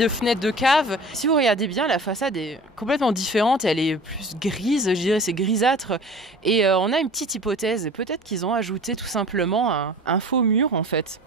fenêtre de cave. Si vous regardez bien, la façade est complètement différente. Elle est plus grise, je dirais, c'est grisâtre. Et on a une petite hypothèse. Peut-être qu'ils ont ajouté tout simplement un faux mur en fait.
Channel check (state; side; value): normal; both; correlation 0.41